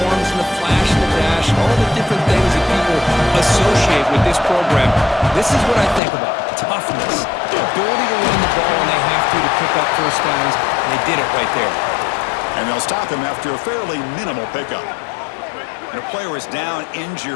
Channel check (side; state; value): right; drops out; at 6.0 s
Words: and the flash and the dash, all the different things that people associate with this program. This is what I think about. Toughness, the ability to run the ball when they have to pick up first downs, and they did it right there. And they'll stop him after a fairly minimal pickup. And a player is down